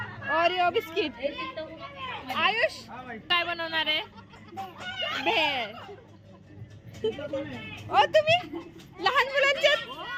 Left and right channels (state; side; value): identical; both; correlation 1.00